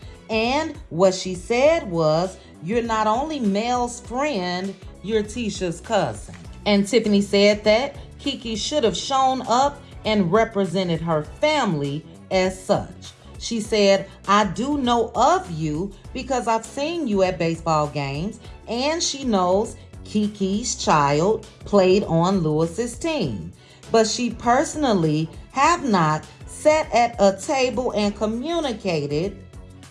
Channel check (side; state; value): both; identical; correlation 1.00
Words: And what she said was, you're not only Mel's friend, you're Tisha's cousin. And Tiffany said that KeKe should have shown up and represented her family as such. She said, I do know of you because I've seen you at baseball games, and she knows KeKe's child played on Lewis's team. But she personally have not sat at a table and communicated